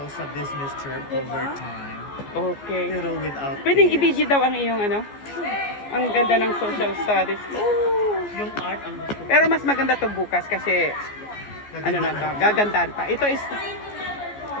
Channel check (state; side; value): late; right; 14 ms